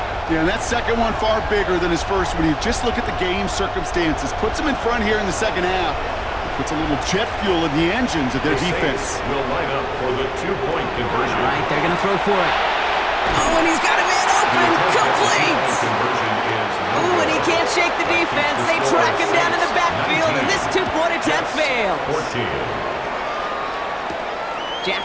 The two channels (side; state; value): both; identical; correlation 1.00